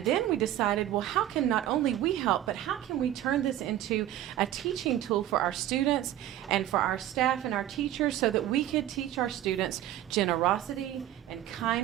then we decided, well, how can not only we help, but how can we turn this into a teaching tool for our students and for our staff and our teachers so that we could teach our students generosity and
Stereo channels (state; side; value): quieter; left; 12.8 dB